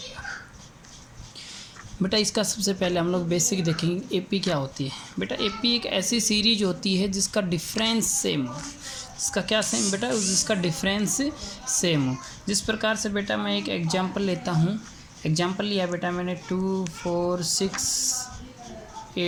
बेटा इसका सबसे पहले हम लोग बेसिक देखेंगे एपी क्या होती है। बेटा एपी एक ऐसी सीरीज होती है जिसका डिफरेंस सेम हो। इसका क्या सेम बेटा, जिसका डिफरेंस सेम हो। जिस प्रकार से बेटा मैं एक एग्जांपल लेता हूँ। एग्जांपल लिया बेटा मैंने 2, 4, 6,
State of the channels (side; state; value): both; identical; correlation 1.00